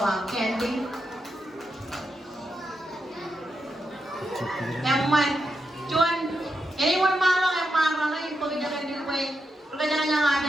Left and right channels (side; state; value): both; normal; correlation 0.85